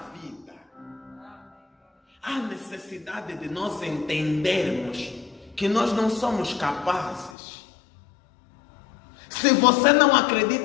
vida. Há necessidade de nós entendermos que nós não somos capazes. Se você não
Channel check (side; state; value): right; drops out; at 7.3 s